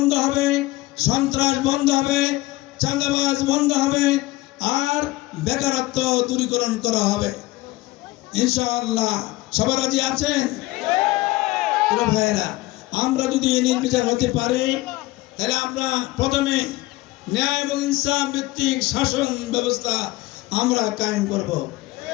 হবে, সন্ত্রাস বন্ধ হবে, চাঁদাবাজ বন্ধ হবে, আর বেকারত্ব দূরীকরণ করা হবে ইনশাআল্লাহ। সবাই রাজি আছেন? ভাইয়েরা, আমরা যদি নির্বিচার হতে পারি, তাহলে আমরা প্রথমে ন্যায় এবং ইনসাফ ভিত্তিক শাসন ব্যবস্থা আমরা কায়েম করব।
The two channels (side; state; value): right; quieter; 19.4 dB